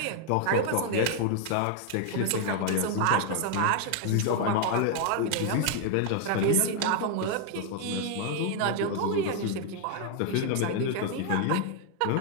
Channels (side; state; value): both; different; correlation 0.00